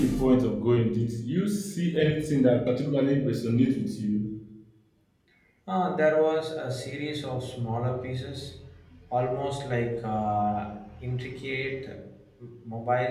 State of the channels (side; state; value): both; identical; correlation 1.00